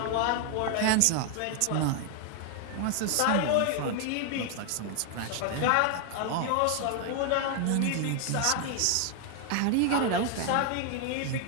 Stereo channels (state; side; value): different; both; correlation 0.00